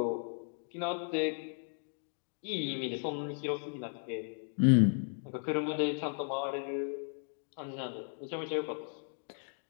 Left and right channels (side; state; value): right; silent; 54 dB below the other